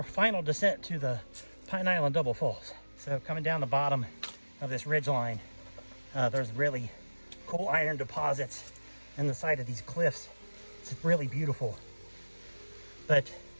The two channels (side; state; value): both; inverted; correlation -1.00